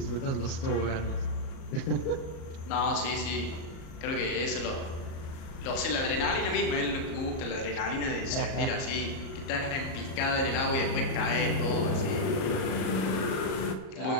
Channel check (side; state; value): right; late; 37 ms